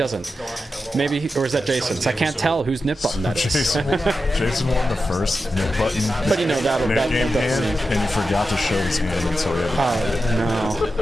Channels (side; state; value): both; normal; correlation 0.90